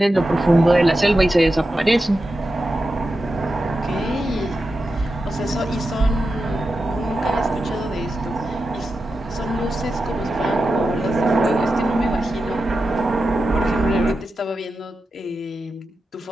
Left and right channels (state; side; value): normal; both; correlation 0.90